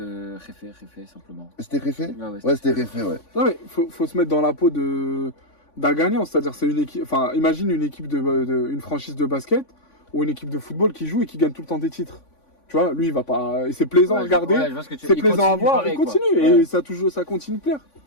Réfé simplement. C'était Réfé. Ouais, c'était Réfé, ouais. Non mais faut se mettre dans la peau d'un gagnant, c'est-à-dire c'est une équipe. Enfin, imagine une équipe une franchise de basket ou une équipe de football qui joue et qui gagne tout le temps des titres. Tu vois, lui il va pas. Et c'est plaisant à regarder. C'est plaisant à voir. Il continue et ça continue de plaire.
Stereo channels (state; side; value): late; right; 3.5 ms